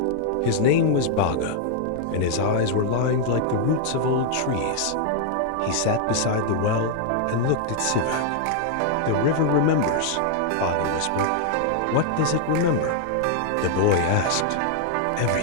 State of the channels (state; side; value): different; both; correlation 0.00